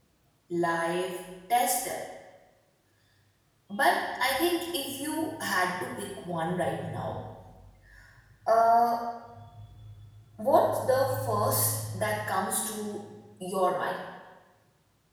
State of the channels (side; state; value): both; identical; correlation 1.00